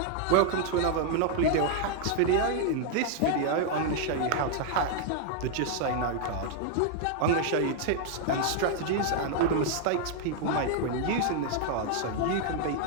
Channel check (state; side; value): different; both; correlation 0.00